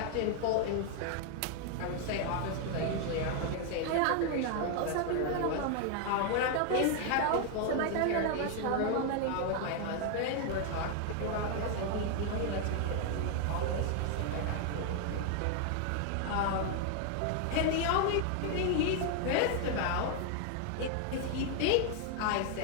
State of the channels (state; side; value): different; both; correlation 0.00